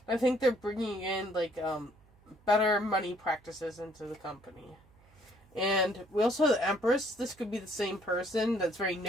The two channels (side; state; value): right; noise; hum, 29 dB below the sound